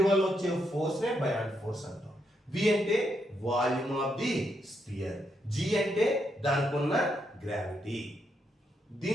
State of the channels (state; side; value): normal; both; correlation 0.79